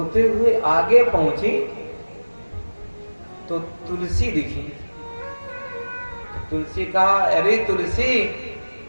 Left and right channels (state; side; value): inverted; both; correlation -1.00